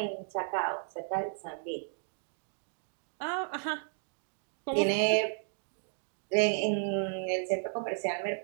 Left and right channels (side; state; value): left; silent; digital silence